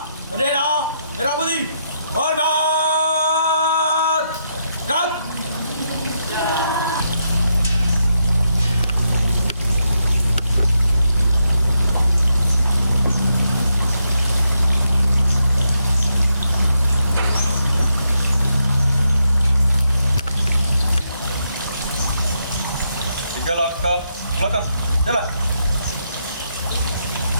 bendera merah putih. Hormat. Gerak. Tiga langkah belakang, jalan.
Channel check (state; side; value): inverted; both; correlation -0.81